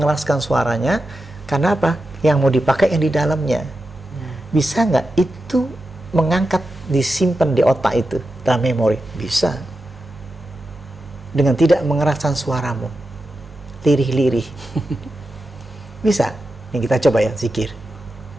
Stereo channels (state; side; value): normal; both; correlation 0.90